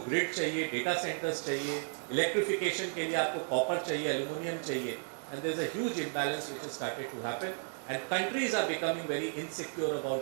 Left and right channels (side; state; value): left; silent; digital silence